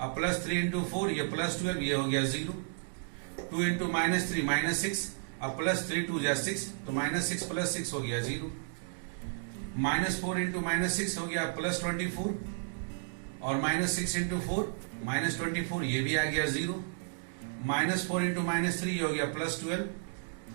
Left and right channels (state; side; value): silent; left; digital silence